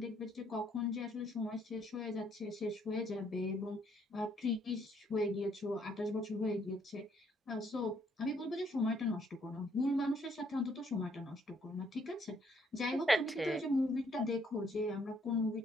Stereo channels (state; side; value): normal; both; correlation 0.68